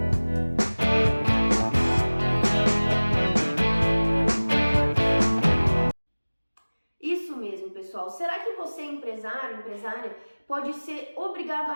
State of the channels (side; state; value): both; inverted; correlation -1.00